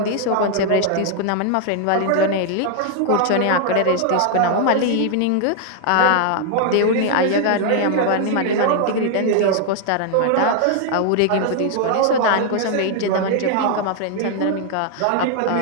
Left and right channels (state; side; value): different; both; correlation 0.00